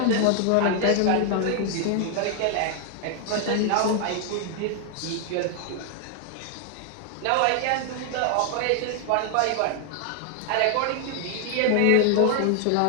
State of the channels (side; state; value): both; different; correlation 0.00